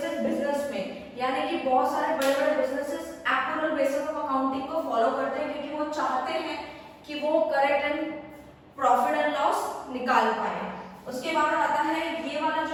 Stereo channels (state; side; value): identical; both; correlation 1.00